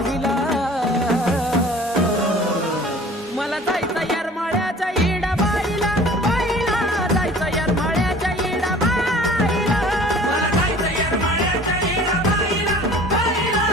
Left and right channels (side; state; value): both; normal; correlation 0.47